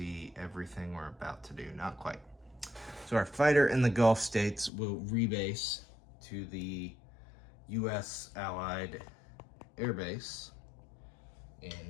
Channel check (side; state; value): right; drops out; at 4.7 s